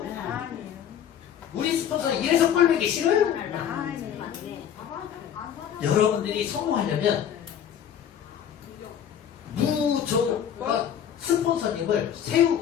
아니요. 우리 스폰서는 이래서 꼴보기 싫어요. 여러분들이 성공하려면 무조건 스폰서님을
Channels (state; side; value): quieter; right; 9.2 dB